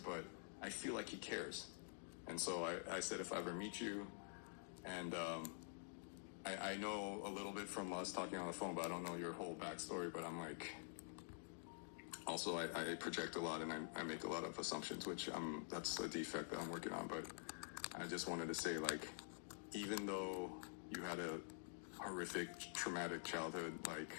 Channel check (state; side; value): silent; right; digital silence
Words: but I feel like he cares. And so I said, if I ever meet you, and I know a little bit from us talking on the phone, but I don't know your whole backstory. But I'm like, also I project a lot and I make a lot of assumptions, which that's a defect that I'm working on. But I just wanted to say, like, even though you had a horrific, traumatic childhood, like,